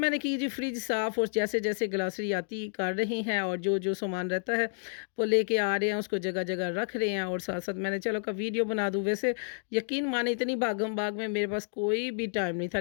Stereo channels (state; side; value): silent; right; digital silence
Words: की जी फ्रिज साफ़, और जैसे-जैसे ग्रॉसरी आती कर रही हैं, और जो सामान रहता है वो लेके आ रहे हैं, उसको जगह-जगह रख रहे हैं, और साथ-साथ मैंने चलो का वीडियो बना दूँ। वैसे यकीन माने इतनी भागम-भाग में मेरे पास कोई भी टाइम नहीं था,